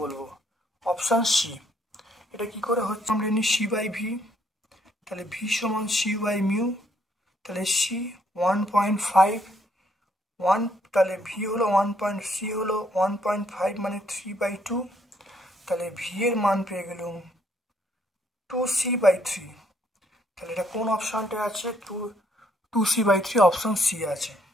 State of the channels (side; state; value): both; normal; correlation 0.69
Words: Option C. এটা কি করে হচ্ছে? আমরা জানি সি বাই ভি, তাহলে ভি সমান সি বাই মিউ, তাহলে সি 1.5, তাহলে ভি হলো 1.সি হলো 1.5 মানে 3/2, তাহলে ভি এর মান পেয়ে গেলাম 2c/3। তাহলে এটা কোন অপশনটা আছে? 2c/3, অপশন সি আছে।